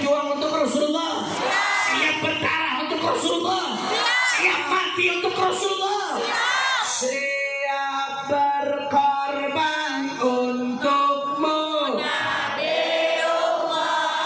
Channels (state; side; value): identical; both; correlation 1.00